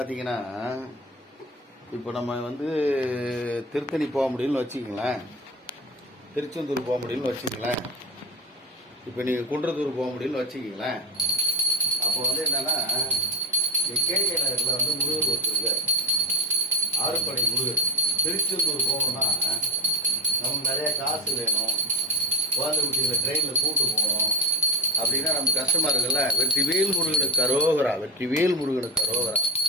இப்போ நம்ம திருத்தணி போக முடியும்னு வச்சுக்கங்களேன், திருச்செந்தூர் போக முடியும்னு வச்சுக்கங்களேன், இப்போ நீங்க குன்றத்தூர் போக முடியும்னு வச்சுக்கங்களேன். அப்போ என்னன்னா கேகே நகர்ல முருகர் ஒருத்தர், ஆறுபடை முருகர். திருச்செந்தூர் போகணும்னா நமக்கு நிறைய காசு வேணும், குழந்தை குட்டிகளை ட்ரெயினில் கூப்பிட்டு போகணும் அப்படின்னா நம்ம கஷ்டமா இருக்குல்ல. வெற்றிவேல் முருகனுக்கு அரோகரா, வெற்றிவேல் முருகனுக்கு அரோகரா.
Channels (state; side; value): normal; both; correlation 0.20